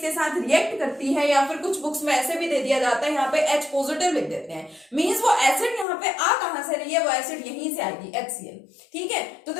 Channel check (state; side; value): drops out; right; at 5.9 s